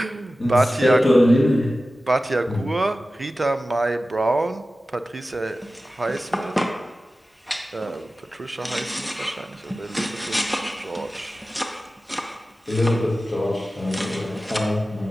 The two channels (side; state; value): both; normal; correlation 0.95